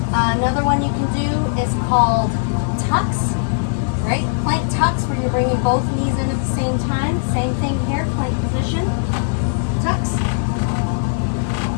Another one you can do is called tucks, right? Plank tucks, where you're bringing both knees in at the same time. Same thing here, plank position, tucks.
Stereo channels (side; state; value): right; silent; digital silence